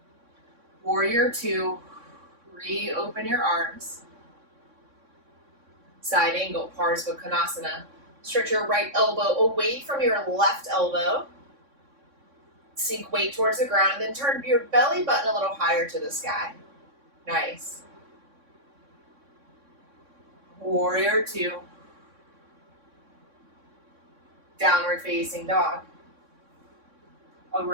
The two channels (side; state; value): left; late; 3.6 ms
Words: Warrior 2, reopen your arms. Side angle, Parsva Konasana. Stretch your right elbow away from your left elbow. Sink weight towards the ground and then turn your belly button a little higher to the sky. Nice. Warrior 2. Downward facing dog.